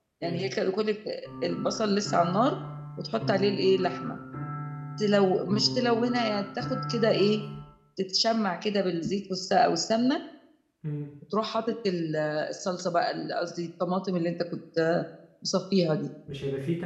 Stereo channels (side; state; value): both; identical; correlation 1.00